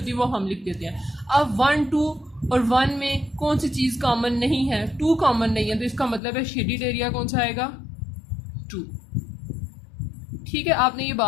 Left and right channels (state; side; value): drops out; right; at 6.2 s